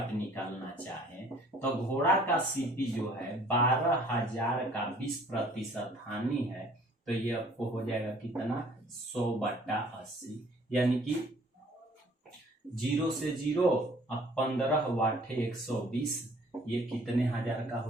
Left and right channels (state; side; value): normal; both; correlation 0.55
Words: निकालना चाहें तो घोड़ा का सीपी जो है 12,000 का 20% हानि है, तो ये आपको हो जाएगा कितना, 100/80, यानी कि 0 से 0 अब 15 वाटे 120, ये कितने हजार का